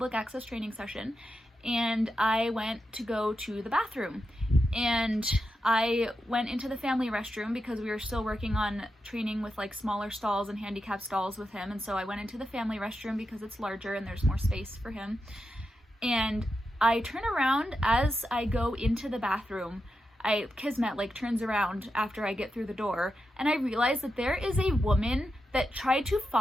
access training session, and I went to go to the bathroom. And I went into the family restroom because we were still working on training with like smaller stalls and handicap stalls with him, and so I went into the family restroom because it's larger and there's more space for him. And I turn around as I go into the bathroom. Kismet like turns around after I get through the door, and I realize that there is a woman that tried to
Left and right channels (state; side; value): normal; both; correlation 0.88